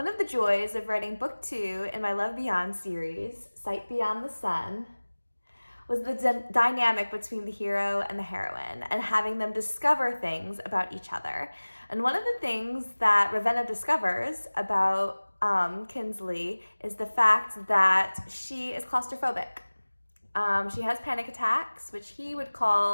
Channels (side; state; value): both; inverted; correlation -1.00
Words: of the joys of writing book 2 in my Love Beyond series, Sight Beyond the Sun, was the dynamic between the hero and the heroine and having them discover things about each other. And one of the things that Ravenna discovers about Kinsley is the fact that she is claustrophobic. She has panic attacks, which he would